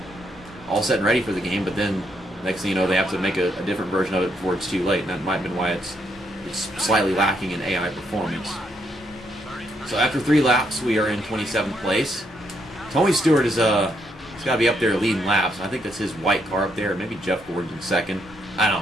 all set and ready for the game, but then next thing you know, they have to make a different version of it before it's too late, and that might have been why it's slightly lacking in AI performance. So after 3 laps, we are in 27th place. Tony Stewart he's got to be up there leading laps. I think that's his white car up there. Maybe Jeff Gordon's in second. I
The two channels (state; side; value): normal; both; correlation 0.75